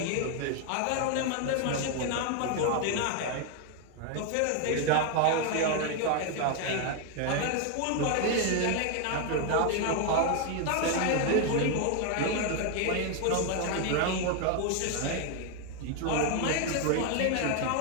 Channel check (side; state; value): both; different; correlation 0.01